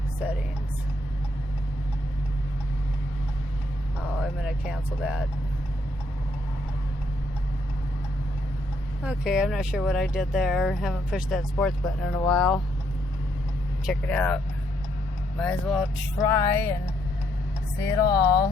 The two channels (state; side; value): normal; both; correlation 0.74